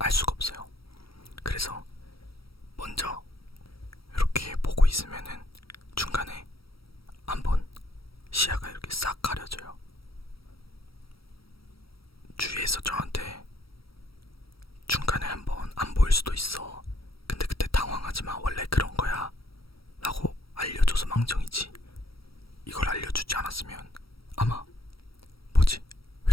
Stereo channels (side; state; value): right; late; 0.75 ms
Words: 수가 없어요. 그래서 먼저 이렇게 보고 있으면은 중간에 한번 시야가 이렇게 싹 가려져요. 주위에서 저한테 중간에 한번 안 보일 수도 있어. 근데 그때 당황하지 마. 원래 그런 거야. 라고 알려줘서 망정이지. 이걸 알려주지 않았으면 아마 뭐지? 왜